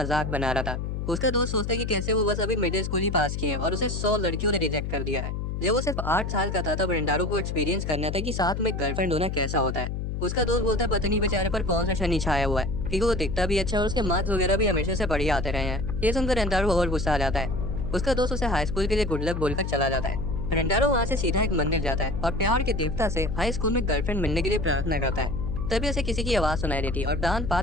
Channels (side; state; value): left; noise; hum, 3 dB below the sound